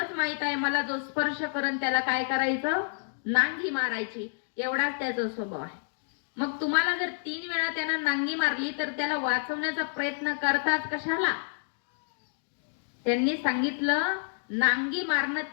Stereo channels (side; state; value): right; silent; digital silence